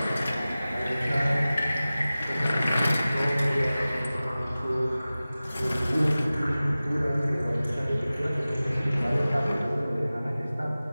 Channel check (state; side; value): inverted; both; correlation -0.97